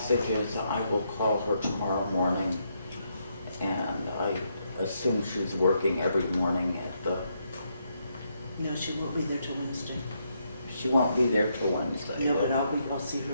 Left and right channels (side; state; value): both; inverted; correlation -0.78